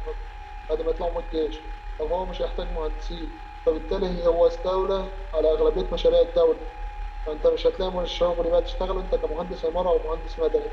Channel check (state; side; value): identical; both; correlation 1.00